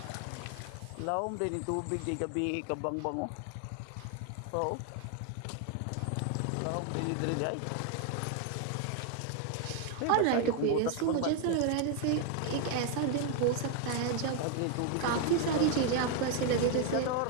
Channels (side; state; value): both; different; correlation 0.00